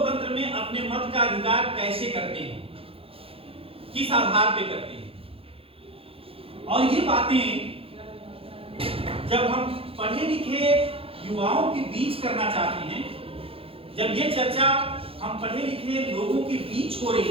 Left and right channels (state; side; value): late; left; 0.27 ms